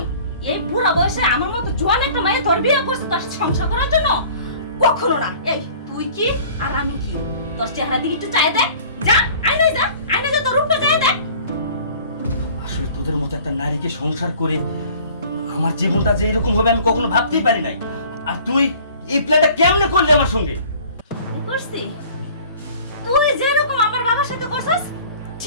এই বুড়া বয়সে আমার মতো জোয়ান একটা মেয়ে তোর বিয়ে করছে তোর সাথে সংসার করার জন্য? কখনো না। এই তুই কি আর আমি কি? তোর চেহারা দিকে একটু চাই দেখ, যা আয়নায় যা তোর রূপটা চাই দেখ। আসলে তোদের মতো একটা নারীকে সংসার করে আমার জীবনটা যে এরকম হবে আমি কখনো ভাবতেই পারি নাই। আর তুই এই প্ল্যানটা কেমনে করলি আমার সঙ্গে? করছি তুই যেরকম আমার বাবার সাথে করছিস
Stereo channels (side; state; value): both; inverted; correlation -0.49